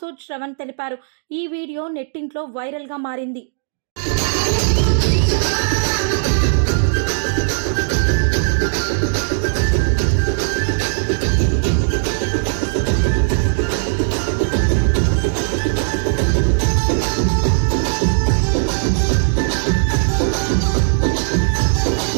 శ్రవణ్ తెలిపారు. ఈ వీడియో నెట్టింట్లో వైరల్గా మారింది.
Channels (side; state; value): left; silent; digital silence